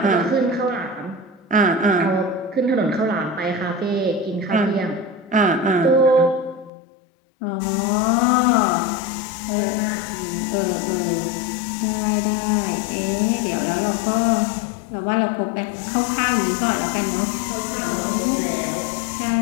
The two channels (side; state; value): right; drops out; at 6.7 s